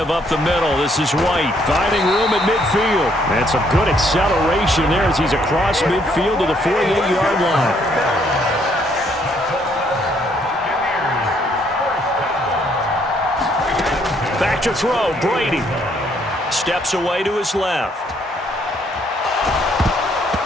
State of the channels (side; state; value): both; normal; correlation 0.68